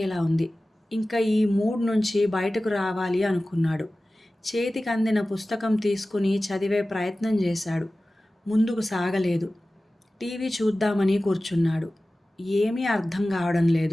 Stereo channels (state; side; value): normal; both; correlation 0.96